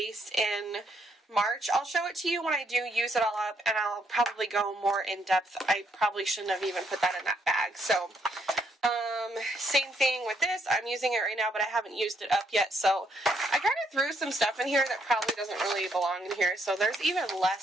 in March. I'll show it to you when I do use it all up, and I'll probably go more in depth. I probably shouldn't have even put that in that bag. So same thing with this. I'm using it right now, but I haven't used it up yet. So I kind of threw some stuff in here that probably doesn't really belong in here. So there's even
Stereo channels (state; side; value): normal; both; correlation 0.73